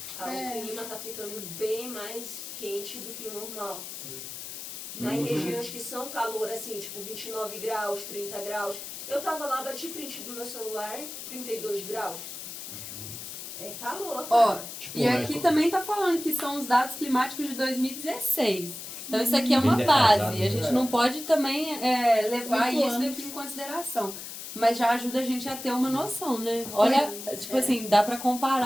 É. O clima tá ficando bem mais quente do que o normal. Em regiões que são calor, assim, tipo 29 graus, 30 graus. Eu tava lá, bati print do meu celular, 32 graus. É calor. Ó, Tipo, e aqui também tá falando que são os dados climáticos de 2016. Então isso aqui é uma Bem defasado, base. A gente né? não pode também levar Muito isso antes. daqui em consideração. Mas já ajuda a gente a ter uma noção, né? Olha, tipo assim, dá pra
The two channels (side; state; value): left; noise; hiss, 9 dB below the sound